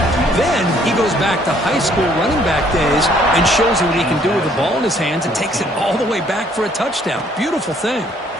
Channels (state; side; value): normal; both; correlation 0.63